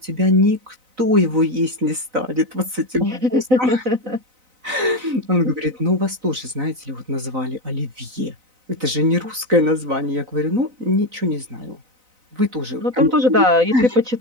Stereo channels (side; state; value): left; late; 4.0 ms